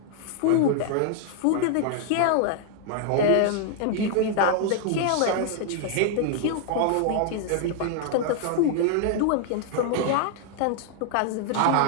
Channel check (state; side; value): different; both; correlation 0.00